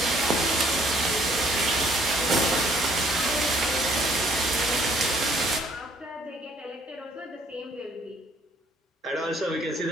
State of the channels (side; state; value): both; normal; correlation 0.62